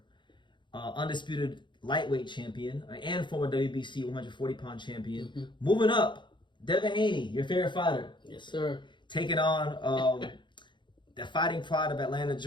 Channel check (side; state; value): right; late; 0.23 ms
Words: undisputed lightweight champion and former WBC 140-pound champion. Moving up, Devin Haney, your favorite fighter. Yes, sir. Taking on the fighting pride of Atlanta,